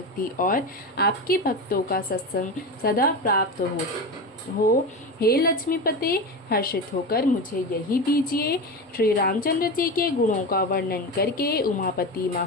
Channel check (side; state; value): both; normal; correlation 0.22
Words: और आपके भक्तों का सत्संग सदा प्राप्त हो। हे लक्ष्मीपते, हर्षित होकर मुझे यही दीजिए। श्री रामचंद्र जी के गुणों का वर्णन करके उमापति